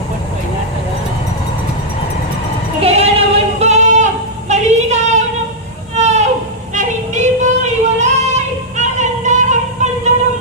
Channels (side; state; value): both; normal; correlation -0.06